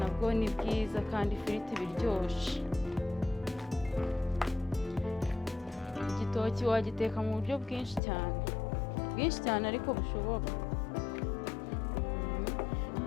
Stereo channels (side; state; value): right; drops out; at 8.0 s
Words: ni bwiza kandi ifiriti biryoshye. Igitoki wagiteka mu buryo bwinshi cyane ariko bushoboka.